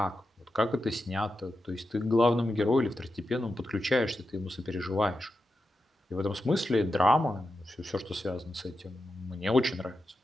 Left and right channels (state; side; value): normal; both; correlation 0.89